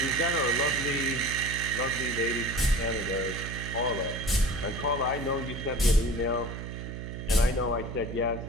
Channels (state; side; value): noise; right; hum, 7 dB below the sound